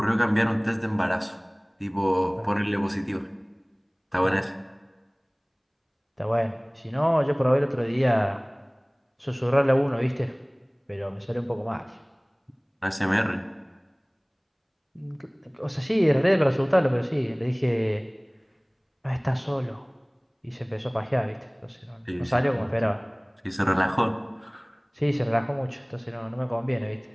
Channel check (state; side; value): identical; both; correlation 1.00